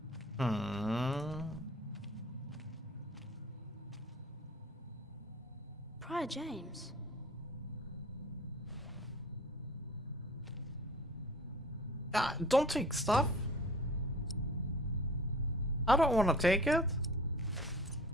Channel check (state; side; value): normal; both; correlation 0.46